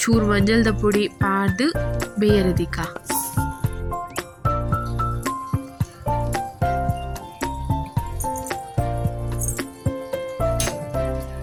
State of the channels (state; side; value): identical; both; correlation 1.00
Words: ಚೂರು ಮಂಜಲ್ದ ಪುಡಿ ಪಾಡ್ದು ಬೇಯರೆದಿಕ್ಕ.